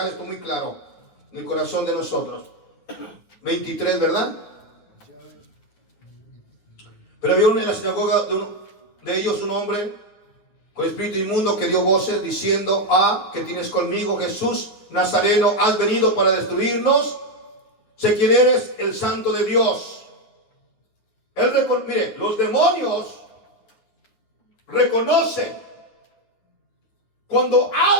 esto muy claro en el corazón de nosotros. 23, ¿verdad? Pero había en la sinagoga de ellos un hombre con espíritu inmundo que dio voces diciendo: ¿qué tienes conmigo, Jesús Nazareno? ¿Has venido para destruirnos? Sé quién eres, el Santo de Dios. Mire, los demonios reconocen cuando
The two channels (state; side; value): late; right; 9.5 ms